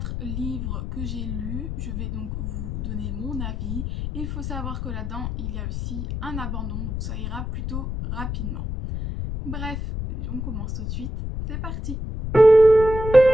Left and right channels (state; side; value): noise; left; rumble, 4 dB below the sound